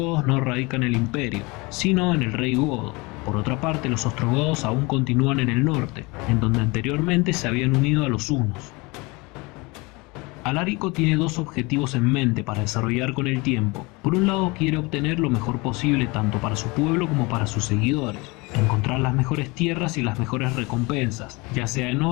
no radica en el imperio, sino en el rey godo. Por otra parte, los ostrogodos aún continúan en el norte, en donde anteriormente se habían unido a los hunos. Alarico tiene dos objetivos en mente para desarrollar con el tiempo. Por un lado, quiere obtener lo mejor posible tanto para su pueblo como para sus seguidores, encontrar las mejores tierras y las mejores recompensas, ya sea en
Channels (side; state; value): right; quieter; 25.8 dB